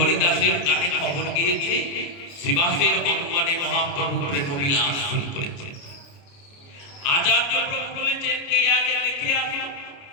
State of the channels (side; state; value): right; late; 29 ms